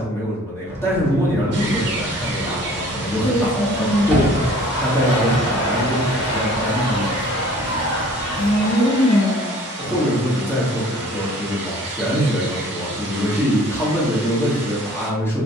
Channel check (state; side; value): normal; both; correlation 0.51